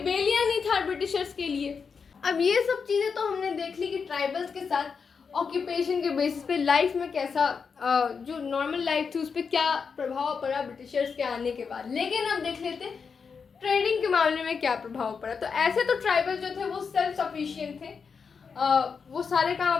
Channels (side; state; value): right; quieter; 5.7 dB